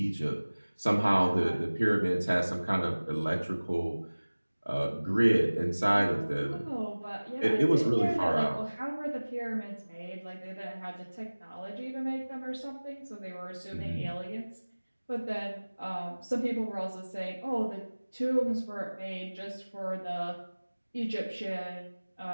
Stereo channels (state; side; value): inverted; both; correlation -1.00